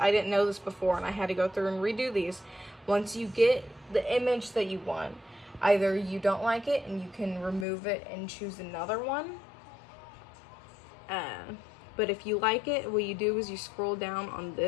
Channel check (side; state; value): right; drops out; at 7.7 s